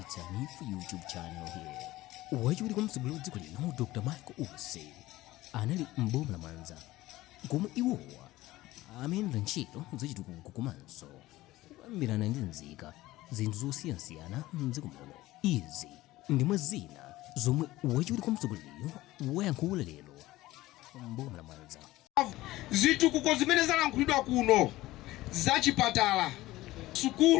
a new YouTube channel here. Wajuri kwa msugulu dziko lino Dr. Michael Use anali mboma la Mwanza komwe iwowa amene ntchito zachitukuko komanso kuyambirana ndi nzika zinthu zosiyanasiyana mdziko muno. Izi ndimwe zina zomwe wajuri kwa msuguliyo wayankhula lero mboma la Mwanza. Zitukuko zimene zalankhulidwa kuno zachipatala,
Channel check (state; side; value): quieter; right; 17.4 dB